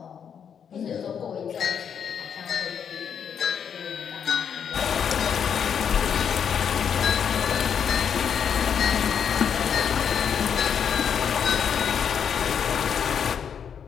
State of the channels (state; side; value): quieter; right; 7.7 dB